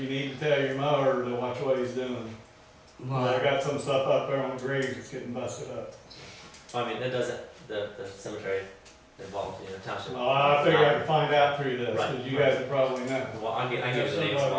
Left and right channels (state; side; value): identical; both; correlation 1.00